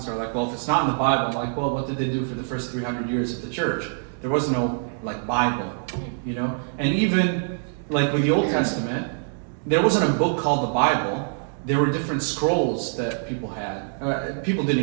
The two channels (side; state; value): left; silent; digital silence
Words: are like, well, if it's not in the Bible, I'm like, well, what did they do for the first 300 years of the church? There was no, Bible, And even, with the Old Testament, there wasn't a book called the Bible. There were different scrolls that people had. People didn't